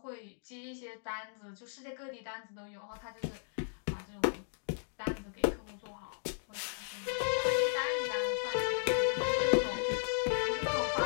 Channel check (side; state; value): right; silent; digital silence